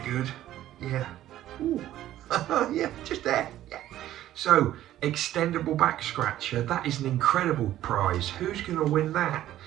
Yeah, ooh, yeah, just there, yeah. So, extendable back scratcher, that is an incredible prize. Who's gonna win that?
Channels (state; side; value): quieter; left; 13.2 dB